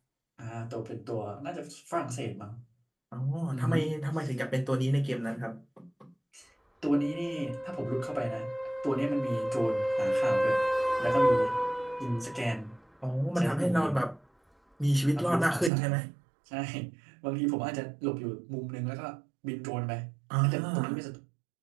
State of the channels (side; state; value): left; drops out; at 15.7 s